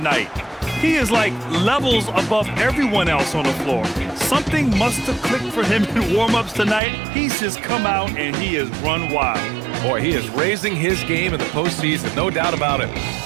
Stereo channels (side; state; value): left; drops out; at 6.8 s